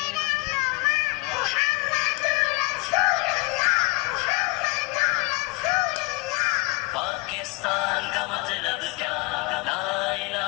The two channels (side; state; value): right; quieter; 27.2 dB